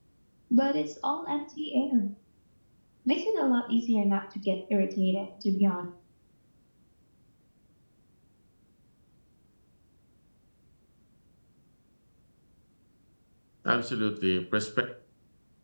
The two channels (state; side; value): inverted; both; correlation -1.00